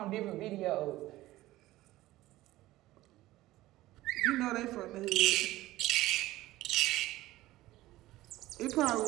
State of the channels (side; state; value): left; quieter; 16.8 dB